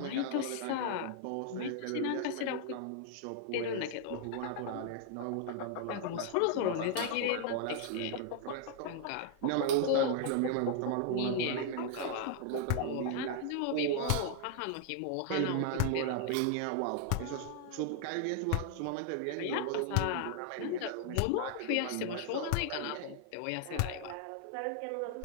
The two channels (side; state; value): both; different; correlation 0.00